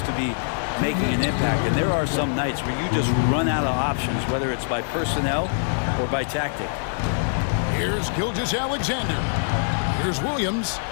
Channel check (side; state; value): right; silent; digital silence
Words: to be making an impact. And there are some nights where you just run out of options, whether it's by personnel or by tactic. Here's Gilgeous-Alexander. Here's Williams.